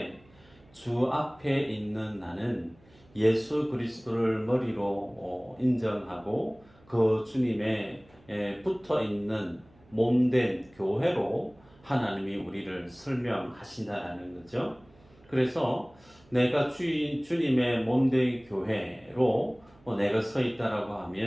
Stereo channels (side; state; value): right; noise; hum, 28 dB below the sound